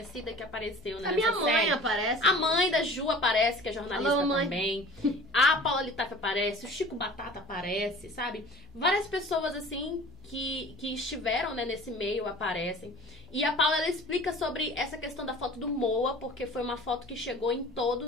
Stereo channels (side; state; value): both; normal; correlation 0.43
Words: que apareceu nessa série. A minha mãe aparece. A mãe da Ju aparece, que é jornalista. Alô, mãe. Também. A Paula Litaif aparece, o Chico Batata aparece, sabe? Várias pessoas, assim, que estiveram, né, nesse meio aparecem. E a Paula, ela explica sobre essa questão da foto do Moa, porque foi uma foto que chegou em